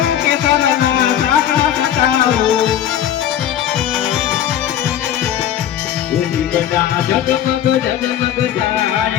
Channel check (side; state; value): right; quieter; 10.7 dB